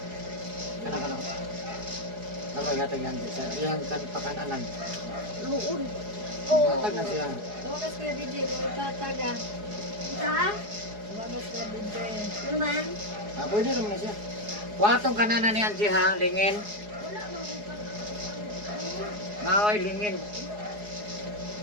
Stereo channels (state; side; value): late; left; 4.8 ms